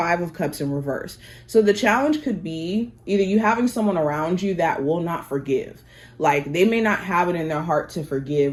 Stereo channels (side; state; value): both; identical; correlation 1.00